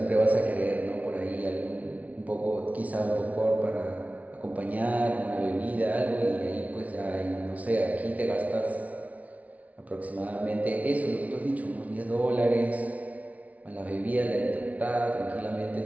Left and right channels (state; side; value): late; left; 0.069 ms